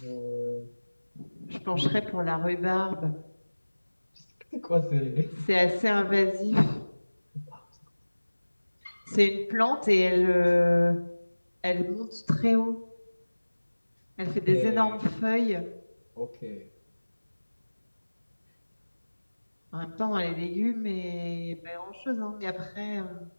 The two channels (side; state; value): both; inverted; correlation -1.00